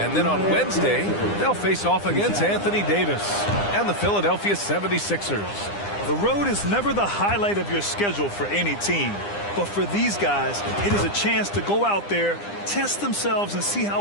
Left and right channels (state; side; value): late; right; 9.9 ms